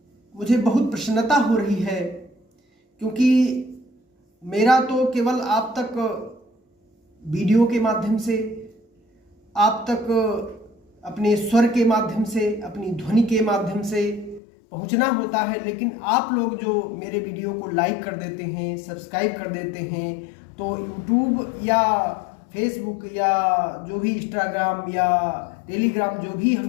मुझे बहुत प्रसन्नता हो रही है क्योंकि मेरा तो केवल आप तक वीडियो के माध्यम से, आप तक अपने स्वर के माध्यम से, अपनी ध्वनि के माध्यम से पहुंचना होता है, लेकिन आप लोग जो मेरे वीडियो को लाइक कर देते हैं, सब्सक्राइब कर देते हैं, तो यूट्यूब या फेसबुक या जो भी इंस्टाग्राम या टेलीग्राम जो भी हम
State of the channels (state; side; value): drops out; right; at 14.4 s